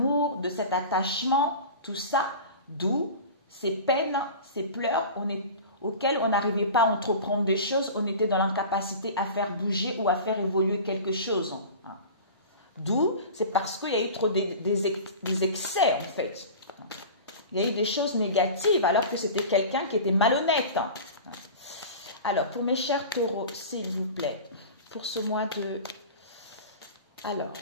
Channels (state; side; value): inverted; both; correlation -0.35